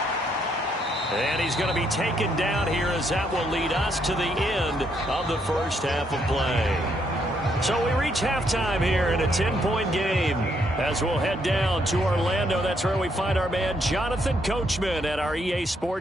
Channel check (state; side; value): normal; both; correlation 0.74